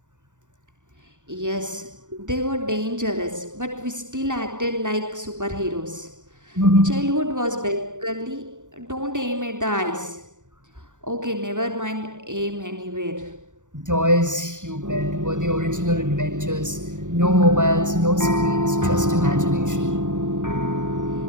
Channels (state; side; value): late; left; 0.86 ms